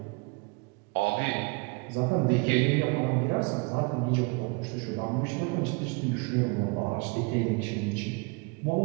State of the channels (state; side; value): quieter; left; 30.1 dB